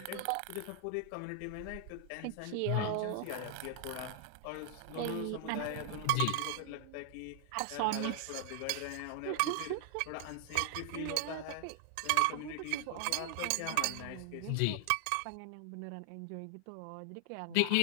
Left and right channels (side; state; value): both; different; correlation 0.00